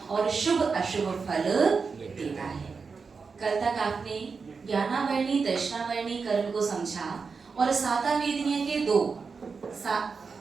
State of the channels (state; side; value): quieter; left; 5.0 dB